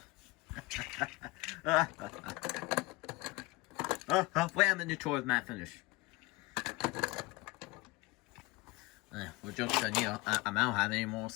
Wait a minute tour of Matt finish. Well, joke's on you. I don't have any moral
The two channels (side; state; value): right; quieter; 22.5 dB